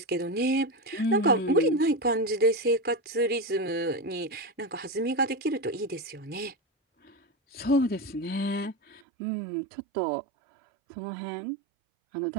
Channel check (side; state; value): left; drops out; at 9.0 s